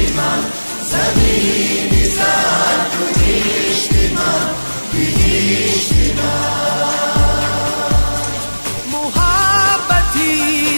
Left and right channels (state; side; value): inverted; both; correlation -1.00